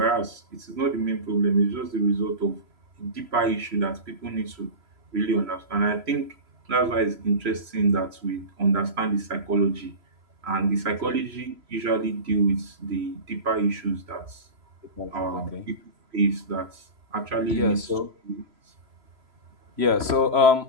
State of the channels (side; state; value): left; late; 3.0 ms